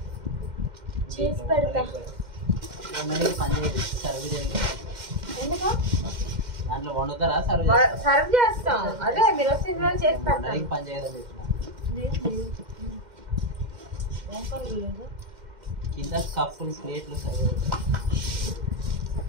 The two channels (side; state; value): left; late; 2.1 ms